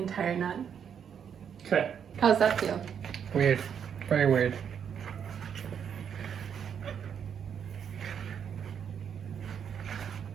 nut. Okay. How's that feel? Weird. Very weird.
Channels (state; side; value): quieter; left; 7.9 dB